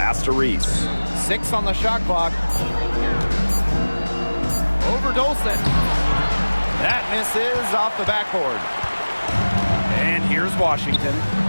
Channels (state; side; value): inverted; both; correlation -1.00